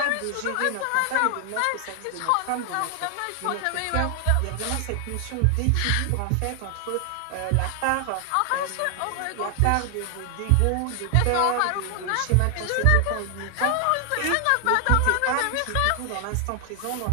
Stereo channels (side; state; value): both; different; correlation 0.00